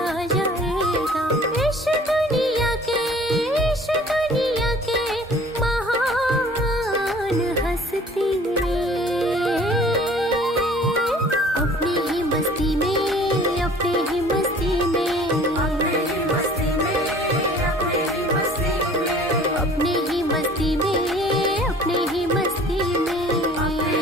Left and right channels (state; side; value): normal; both; correlation 0.50